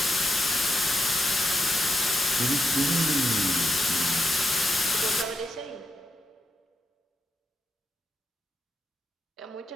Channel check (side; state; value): both; normal; correlation 0.84